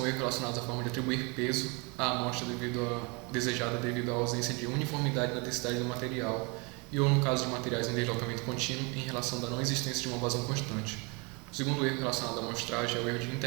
erros relacionados à forma de atribuir peso à amostra desejada devido à ausência de uniformidade na densidade do material e ou no caso de materiais em deslocamento contínuo em relação da não existência de uma vazão constante. O segundo erro relacionado à amostragem é o erro de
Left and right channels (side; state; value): left; quieter; 30.0 dB